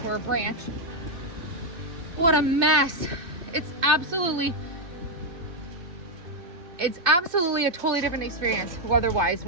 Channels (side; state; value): left; late; 2.6 ms